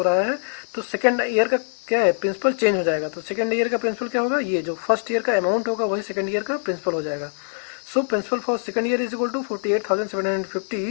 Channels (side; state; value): right; silent; digital silence